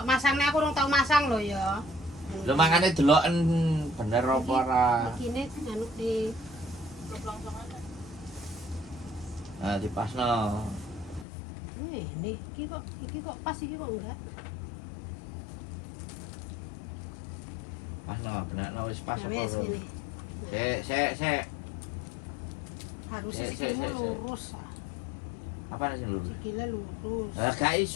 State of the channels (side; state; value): right; drops out; at 11.2 s